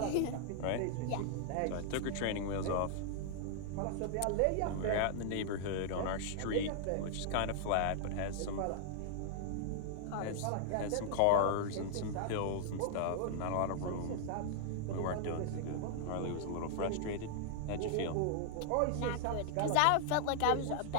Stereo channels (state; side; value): different; both; correlation -0.01